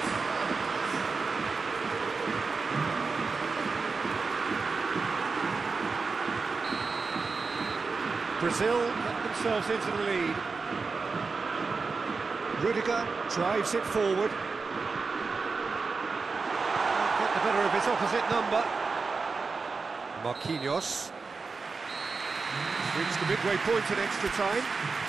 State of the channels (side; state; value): left; quieter; 4.5 dB